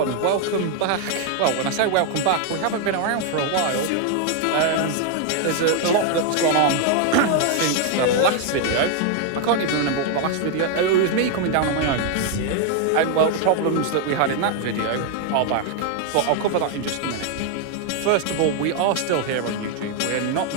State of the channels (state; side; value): different; both; correlation 0.00